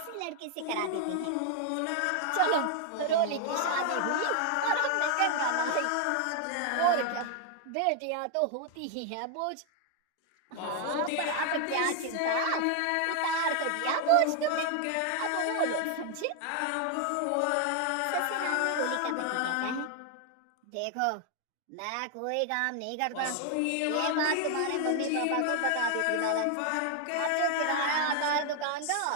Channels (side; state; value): both; different; correlation 0.00